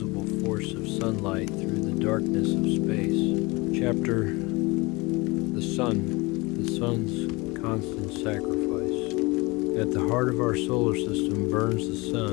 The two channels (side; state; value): right; quieter; 24.6 dB